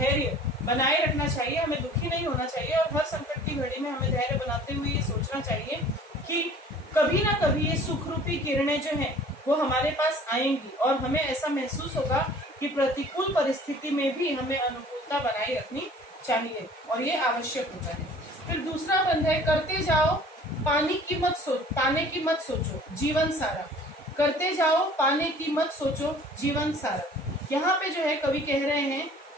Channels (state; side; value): normal; both; correlation 0.49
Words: बनाए रखना चाहिए, हमें दुखी नहीं होना चाहिए, और हर संकट की घड़ी में हमें धैर्य बनाते हुए ये सोचना चाहिए कि कभी ना कभी ये सुख रूपी किरणें जो हैं वो हमारे पास आएंगी, और हमें ऐसा महसूस होगा कि प्रतिकूल परिस्थिति में भी हमें अनुकूलता बनाए रखनी चाहिए, और ये आवश्यक होता है. फिर दूसरा बंद है, करते जाओ पाने की मत सोचो जीवन सारा. करते जाओ, पाने की मत सोचो जीवन सारा. यहाँ पे जो है कवि कह रहे हैं